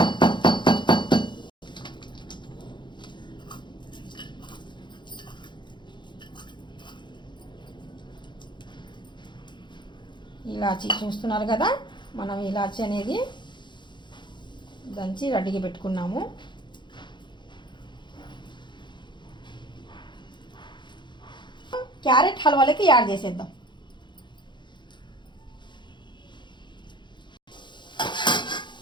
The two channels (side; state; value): right; late; 0.22 ms